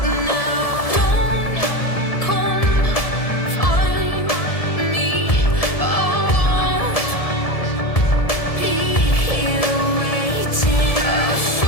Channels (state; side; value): late; right; 1.7 ms